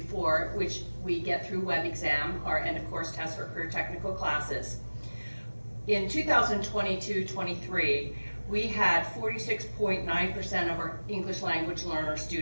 which we get through web exam, our end of course test for career technical classes. In 2022-23, we had 46.9% of our English language learner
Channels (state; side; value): inverted; both; correlation -1.00